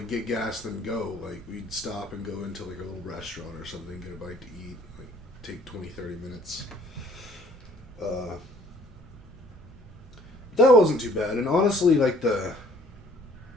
get gas and then go. Like, we'd stop and go into, like, a little restaurant or something, get a bite to eat, like, take 20, 30 minutes. That wasn't too bad. And honestly, like, the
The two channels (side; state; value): both; normal; correlation 0.58